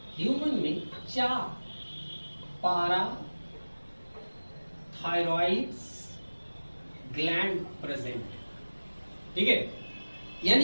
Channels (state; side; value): inverted; both; correlation -1.00